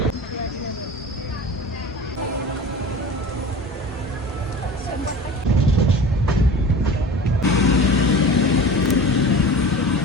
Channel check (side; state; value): both; normal; correlation 0.36